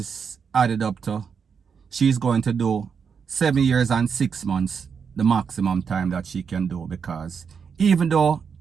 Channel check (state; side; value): quieter; left; 6.4 dB